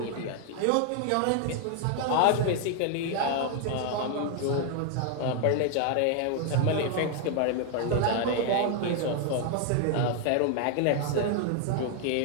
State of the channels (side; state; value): both; different; correlation 0.00